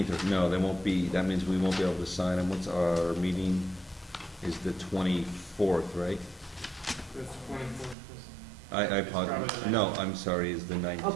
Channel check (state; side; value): drops out; left; at 8.0 s